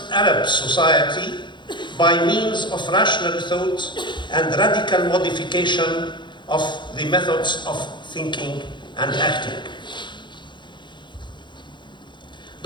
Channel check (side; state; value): right; late; 0.23 ms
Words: Arab society by means of rational thought and radical modification of the methods of thinking and acting.